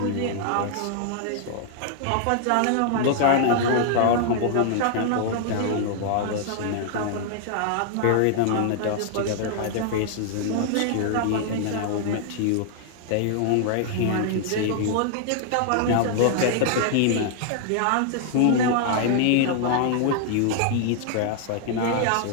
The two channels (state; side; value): different; both; correlation 0.00